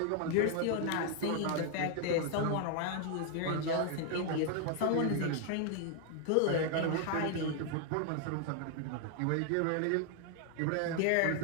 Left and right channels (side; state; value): both; different; correlation 0.00